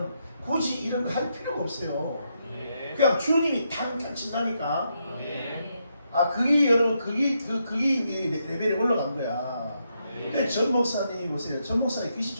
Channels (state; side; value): inverted; both; correlation -0.80